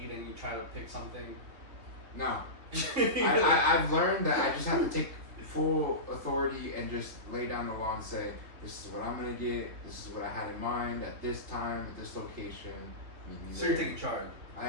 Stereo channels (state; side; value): late; left; 3.8 ms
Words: and you try to pick something? no. I've learned that I just have to take full authority and just lay down the law and say, this is what I'm gonna get, this is what I had in mind at this time, at this location. So you're taking charge. I